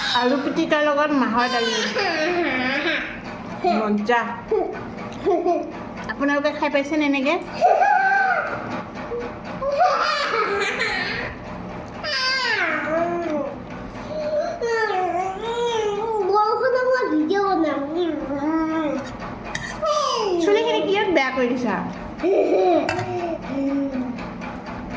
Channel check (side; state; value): both; identical; correlation 1.00